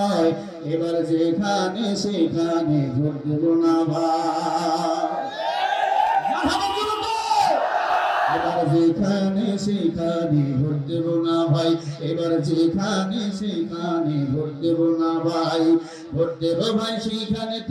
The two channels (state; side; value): identical; both; correlation 1.00